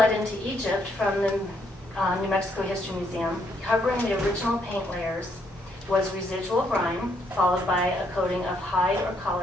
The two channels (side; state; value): both; normal; correlation 0.73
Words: into Egypt from the New Mexico History Museum, covering the original paint layers was residual grime, followed by a coating of hide or